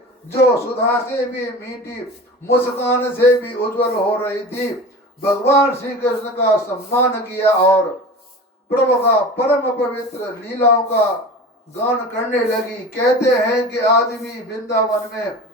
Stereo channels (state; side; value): normal; both; correlation 0.34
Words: जो सुधा से भी मीठी, मुस्कान से भी उज्जवल हो रही थी, भगवान श्री कृष्ण का सम्मान किया और प्रभु का परम पवित्र लीलाओं का गान करने लगी। कहते हैं कि आज भी वृंदावन में